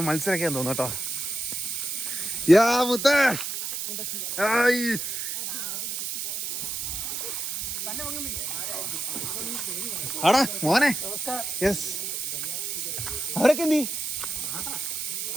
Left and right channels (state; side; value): noise; right; hiss, 3 dB below the sound